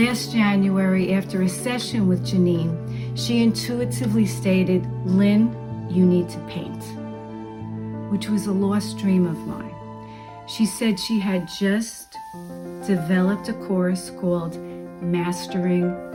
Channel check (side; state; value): both; identical; correlation 1.00